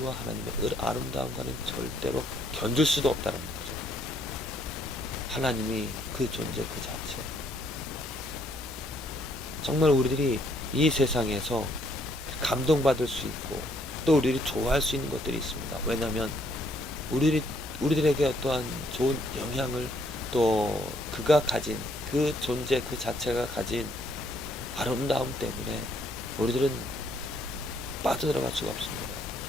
하나님의 아름다움과는 절대로 견줄 수도 없다는 거죠. 하나님이 그 존재 그 자체. 정말 우리들이 이 세상에서 감동받을 수 있고 또 우리들이 좋아할 수 있는 것들이 있습니다. 왜냐하면 우리들에게 어떠한 좋은 영향을 또 그가 가진 그 존재 그 자체가 가진 아름다움 때문에 우리들은 빠져들어갈 수가 없습니다.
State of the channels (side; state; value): both; normal; correlation 0.68